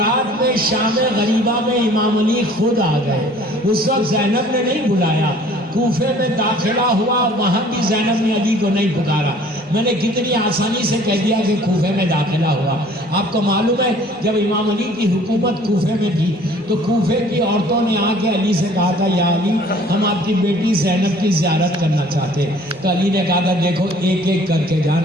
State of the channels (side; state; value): both; normal; correlation 0.53